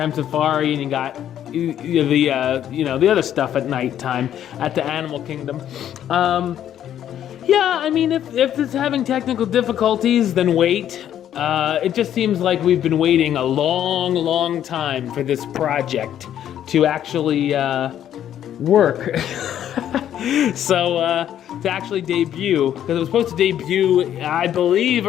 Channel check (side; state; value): right; quieter; 10.6 dB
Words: safari, and you got the other stuff at nighttime at the Animal Kingdom. Yeah, I mean, if it's having technical difficulties, then wait. It just seems like we've been waiting a long time for this project to actually work. So, to actually debut, because it was supposed to debut, I believe,